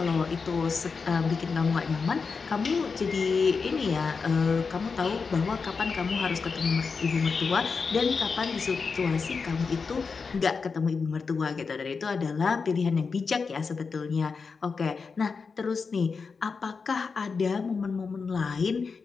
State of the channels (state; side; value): quieter; right; 5.0 dB